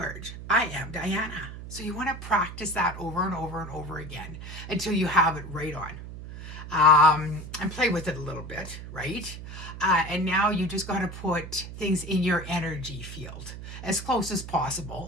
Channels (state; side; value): noise; right; hum, 11 dB below the sound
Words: I am Diana. So you want to practice that over and over and over again until you have it right on. And play with it a little bit, right? And now you just got to put things in your energy field as close as